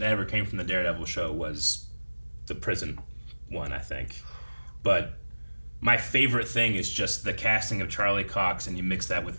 ever came from the Daredevil show was the prison one, I think. But my favorite thing is just the casting of Charlie Cox, and you mix that with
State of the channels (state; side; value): inverted; both; correlation -1.00